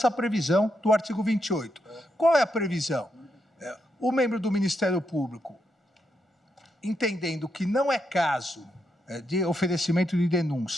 previsão do artigo 28. Qual é a previsão? O membro do Ministério Público, entendendo que não é caso de oferecimento de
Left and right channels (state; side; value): normal; both; correlation 0.82